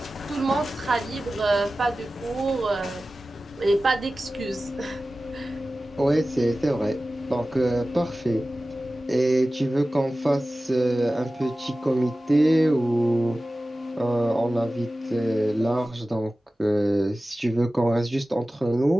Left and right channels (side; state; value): both; normal; correlation 0.96